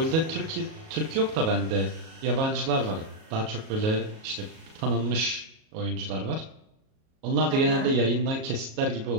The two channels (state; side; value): late; left; 37 ms